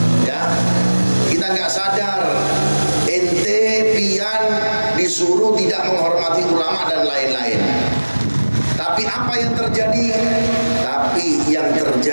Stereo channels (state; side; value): inverted; both; correlation -1.00